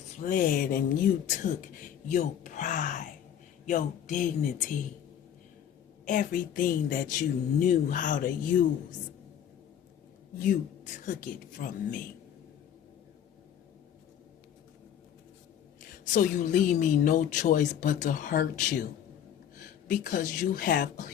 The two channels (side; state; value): right; quieter; 9.5 dB